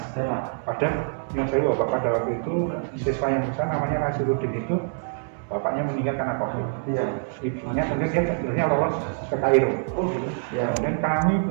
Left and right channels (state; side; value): silent; left; 62 dB below the other